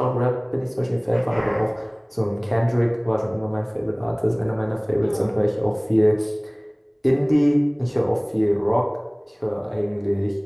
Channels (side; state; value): both; identical; correlation 1.00